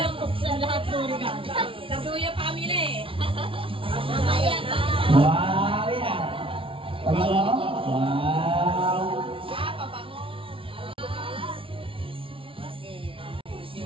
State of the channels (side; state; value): left; late; 0.25 ms